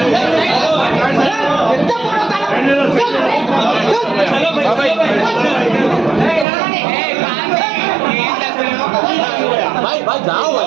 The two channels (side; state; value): left; drops out; at 6.5 s